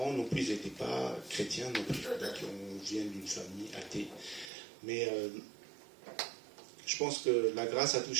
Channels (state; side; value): drops out; left; at 4.5 s